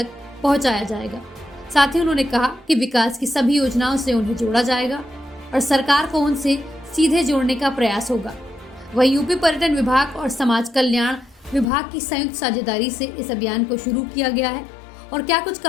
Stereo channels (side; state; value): right; drops out; at 11.7 s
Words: पहुंचाया जाएगा। साथ ही उन्होंने कहा कि विकास की सभी योजनाओं से उन्हें जोड़ा जाएगा और सरकार को उनसे सीधे जोड़ने का प्रयास होगा। वहीं यूपी पर्यटन विभाग और समाज कल्याण विभाग की संयुक्त साझेदारी से इस अभियान को शुरू किया गया है। और क्या कुछ